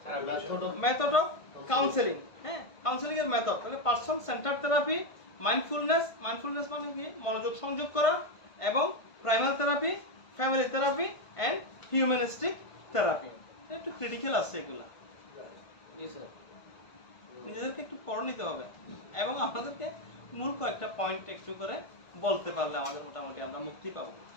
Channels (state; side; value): late; right; 1.5 ms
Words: therapy, method of counselling. হ্যাঁ, কাউন্সেলিং এর মেথড। তাহলে পারসন সেন্টার্ড থেরাপি, মাইন্ডফুলনেস মানে কি মনোযোগ সংযোগ করা, এবং primal therapy, family therapy and humanistic therapy. একটু ক্রিটিক্যাল আছে এগুলা, নিজেদেরকে একটু পড়ে নিতে হবে, এবং আপনাদেরকে মূল কয়েকটা পয়েন্ট একটু করে বলতে পারলে আমাদের মোটামুটি আমরা মুক্তি পাবো।